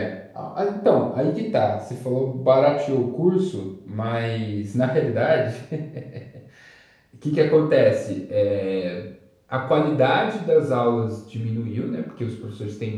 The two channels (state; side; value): identical; both; correlation 1.00